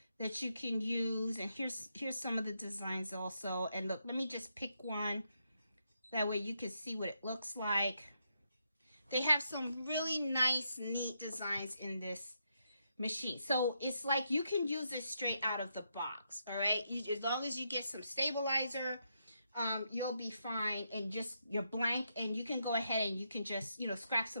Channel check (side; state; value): both; inverted; correlation -0.81